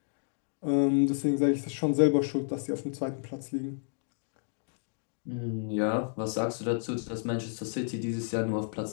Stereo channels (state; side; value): silent; right; digital silence